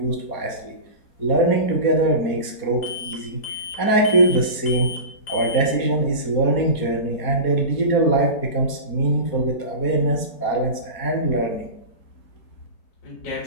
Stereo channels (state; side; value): late; right; 4.3 ms